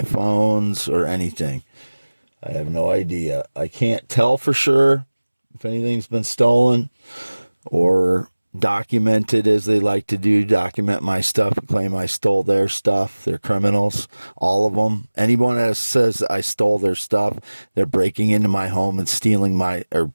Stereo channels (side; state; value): both; inverted; correlation -1.00